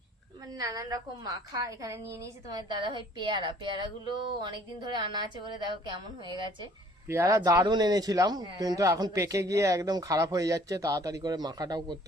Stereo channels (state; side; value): normal; both; correlation 0.57